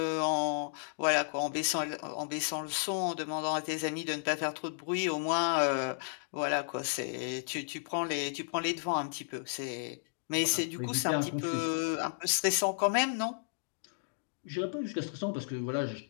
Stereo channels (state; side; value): silent; right; digital silence